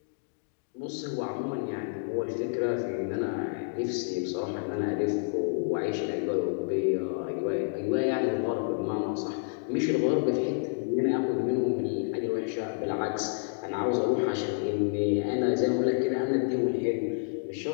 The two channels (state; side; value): silent; right; digital silence